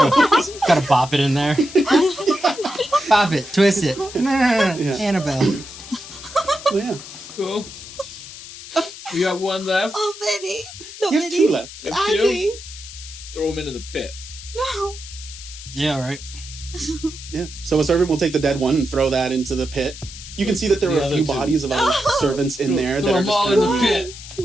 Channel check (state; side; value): noise; left; hiss, 14 dB below the sound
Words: Gotta bop it in there. Bop it, twist it. Yeah. Annabelle. Well, yeah. Cool. We got one left. oh, Vinny, no, You have Vinny, two left. Andy, Throw him into the pit. no. Yeah, right. Yeah. So a servant will take the dead one and throw that into the pit. You can see that there The are a other few two. bodies of other servants in there Throw that are them just all kind in of the pit.